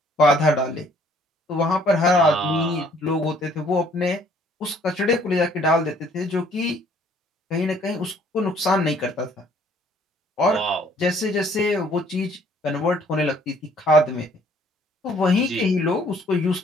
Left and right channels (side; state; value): both; normal; correlation 0.61